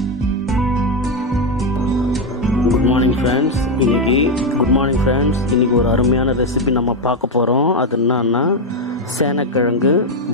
குட் மார்னிங் ஃப்ரெண்ட்ஸ், இன்றைக்கி ஒரு அருமையான ரெசிபி நம்ம பார்க்க போகிறோம். அது என்னன்னா சேனக்கிழங்கு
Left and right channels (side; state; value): both; normal; correlation 0.06